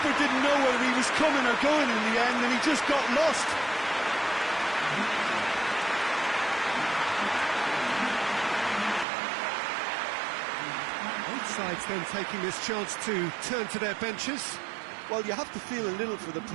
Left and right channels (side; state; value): left; drops out; at 9.1 s